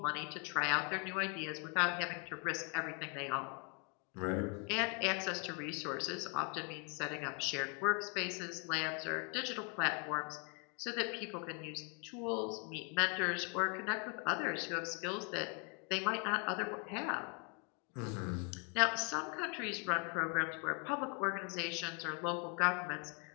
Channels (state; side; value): quieter; right; 36.0 dB